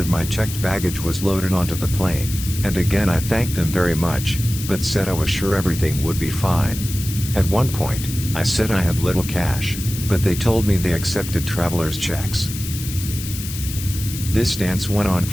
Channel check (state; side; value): noise; left; hiss, 9 dB below the sound